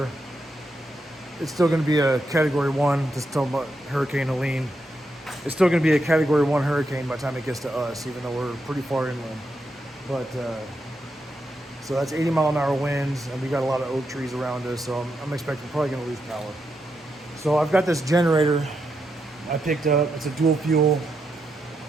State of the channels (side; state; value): both; normal; correlation 0.83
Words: it's still going to be a Category 1, just talking about Hurricane Helene. It's still going to be a Category 1 hurricane by the time it gets to us, even though we're pretty far inland. But, so that's 80-mile-an-hour winds, and we got a lot of oak trees around us, so I'm expecting we're probably going to lose power. So I've got this generator I picked up. It's a dual fuel